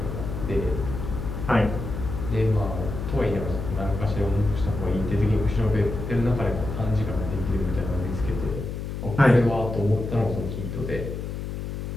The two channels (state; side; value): noise; left; hum, 5 dB below the sound